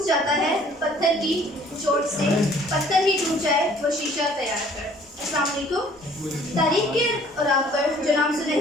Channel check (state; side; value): normal; both; correlation 0.56